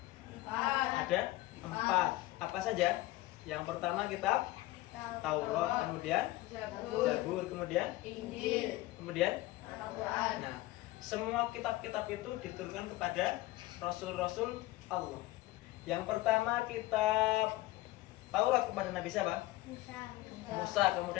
Ada 4. Apa saja? Yang pertama kitab Taurat, kemudian Zabur, kemudian Injil, kemudian. Al-Quran. Nah, semua kitab-kitab itu diturunkan kepada Rasul-Rasul Allah. Yang pertama kitab Taurat kepada Nabi siapa? Musa.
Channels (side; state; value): right; quieter; 18.0 dB